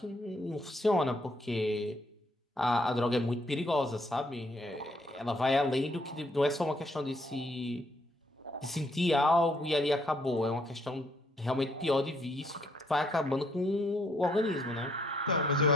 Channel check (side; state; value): both; normal; correlation 0.70